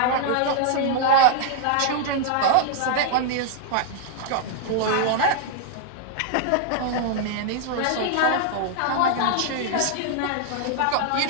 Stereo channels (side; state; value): both; different; correlation 0.00